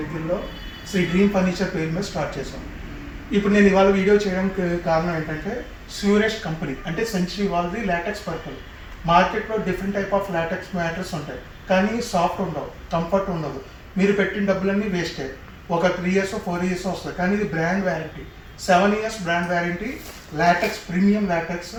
శ్రీ డ్రీమ్ ఫర్నిచర్ పేరు మీద స్టార్ట్ చేశాం. ఇప్పుడు నేను ఇవాళ వీడియో చేయడానికి కారణం ఏంటంటే స్యూరెస్ట్ కంపెనీ అంటే సెంచరీ వాళ్ళది లాటెక్స్ పర్పల్. మార్కెట్లో different type of LaTeX matters ఉంటాయి, కానీ సాఫ్ట్ ఉండవు, కంఫర్ట్ ఉండదు. మీరు పెట్టిన డబ్బులన్నీ వేస్టే. ఒక 3 years 4 years వస్తుంది, కానీ ఇది brand warranty. 7 years brand warranty. LaTeX, premium LaTeX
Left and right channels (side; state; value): both; identical; correlation 1.00